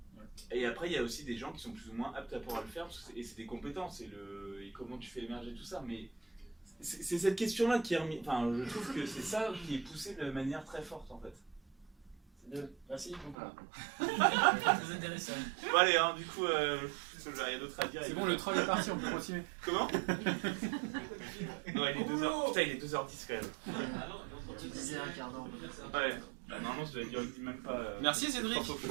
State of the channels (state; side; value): drops out; left; at 13.4 s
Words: Et après, il y a aussi des gens qui sont plus ou moins aptes à pouvoir le faire, et c'est des compétences, et comment tu fais émerger tout ça. Mais c'est cette question-là qui est remise. Enfin, je trouve que c'est ça qui est poussé de manière très forte en fait. C'est bien. Merci beaucoup. Voilà. Très intéressant. Bon, allez, hein, du coup, il y a d'autres à dire. C'est bon, le troll est parti, on peut continuer. Comment? Non, il est 2h. Putain, il est 2h10 quand même. Tu disais un quart d'heure. Ouais. Bah, normalement, je l'avais dit même pas. Merci Cédric.